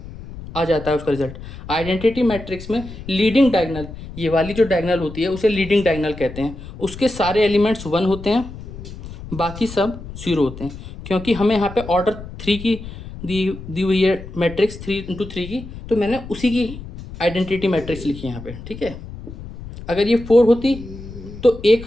आ जाता है उसका रिजल्ट। आइडेंटिटी मैट्रिक्स में लीडिंग डायगोनल, ये वाली जो डायगोनल होती है उसे लीडिंग डायगोनल कहते हैं, उसके सारे एलिमेंट्स 1 होते हैं, बाकी सब 0 होते हैं, क्योंकि हमें यहाँ पे ऑर्डर 3 की दी हुई है मैट्रिक्स 3 × 3 की, तो मैंने उसी की आइडेंटिटी मैट्रिक्स लिखी है यहाँ पे। ठीक है, अगर ये 4 होती तो एक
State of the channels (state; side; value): noise; left; rumble, 13 dB below the sound